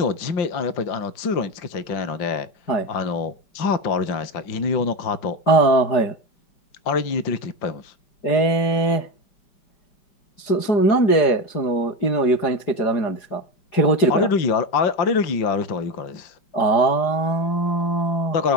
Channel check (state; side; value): late; right; 4.8 ms